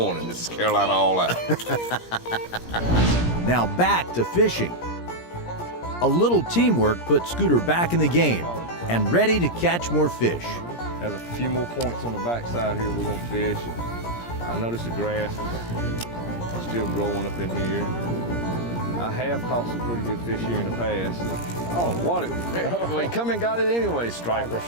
this is Carolina All Out. Now back to fishing. A little teamwork put Scooter back in the game and ready to catch more fish. Has a few more points on the backside here we're gonna fish. I noticed the grass is still growing up in here. I have caught some pretty good fish here in the past. I don't know what it was. Well, he come and got it anyway, stripers.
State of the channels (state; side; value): late; right; 17 ms